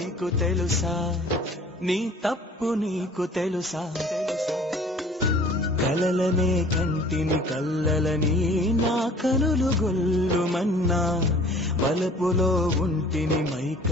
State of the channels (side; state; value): both; normal; correlation 0.50